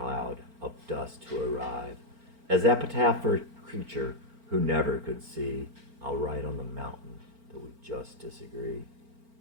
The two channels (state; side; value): late; left; 4.4 ms